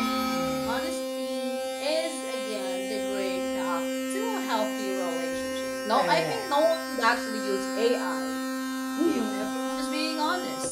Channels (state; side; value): identical; both; correlation 1.00